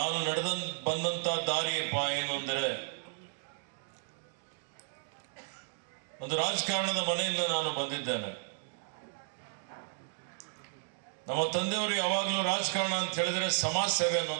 ಬಂದಂತ ದಾರಿಯಪ್ಪ ಏನು ಅಂದರೆ, ಒಂದು ರಾಜಕಾರಣದ ಮನೆಯಿಂದ ನಾನು ಬಂದಿದ್ದೇನೆ. ನಮ್ಮ ತಂದೆಯವರು ಯಾವಾಗಲೂ ರಾಜಕಾರಣ ಅಂತ ಹೇಳಿದ್ರೆ ಸಮಾಜ ಸೇವೆ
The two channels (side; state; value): left; silent; 55 dB below the other